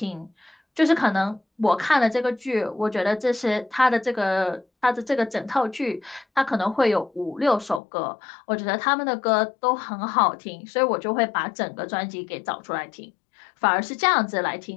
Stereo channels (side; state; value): right; drops out; at 7.8 s